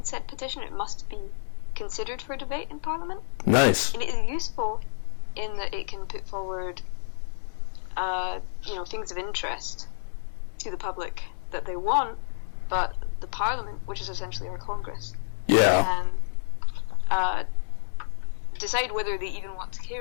said petition, it must be considered for debate in Parliament. Nice. And it is useful in that it can put forward, things of interest to the public that they want, but the Parliament, which is essentially our Congress, can decide whether they even want to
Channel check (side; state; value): right; silent; 59 dB below the other